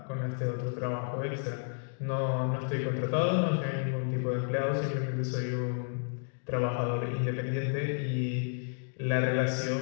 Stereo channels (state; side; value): silent; right; 57 dB below the other